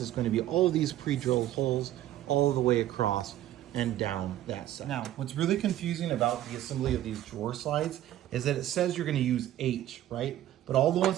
gonna be all of these pre-drilled holes all the way across and down that side. Now, what's really confusing about the assembly of these drawer slides is that it says you're gonna use H, right? But all the ones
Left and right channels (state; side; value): quieter; left; 13.2 dB